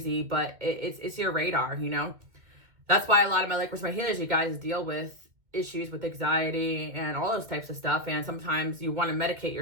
but it's your radar, you know. That's why a lot of my Lightworkers, my healers, you guys deal with issues with anxiety and all those types of stuff. And sometimes you want to medicate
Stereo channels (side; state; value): left; late; 2.1 ms